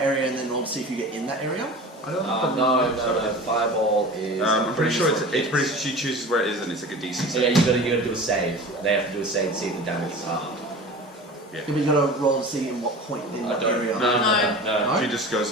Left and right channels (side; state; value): both; normal; correlation 0.36